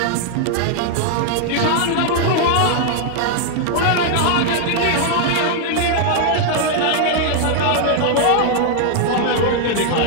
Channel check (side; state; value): both; different; correlation 0.00